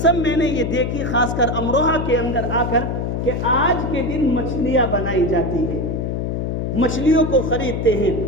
میں نے یہ دیکھی، خاص کر امروہہ کے اندر آ کر، کہ آج کے دن مچھلیاں بنائی جاتی ہے، مچھلیوں کو خریدتے ہیں۔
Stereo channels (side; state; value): left; noise; hum, 2 dB below the sound